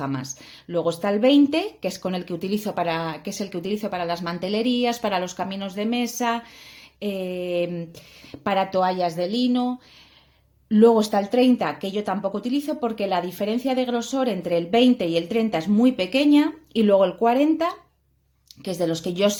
Luego está el 20, que es con el que utilizo para las mantelerías, para los caminos de mesa, para toallas de lino. Luego está el 30, que yo tampoco utilizo porque la diferencia de grosor entre el 20 y el 30 es muy pequeña. Y luego el 40, que es de los que yo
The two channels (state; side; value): identical; both; correlation 1.00